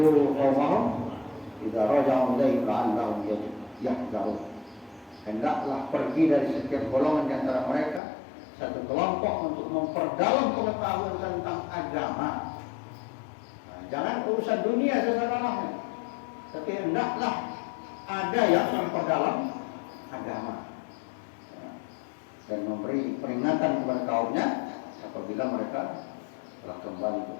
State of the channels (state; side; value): drops out; right; at 8.0 s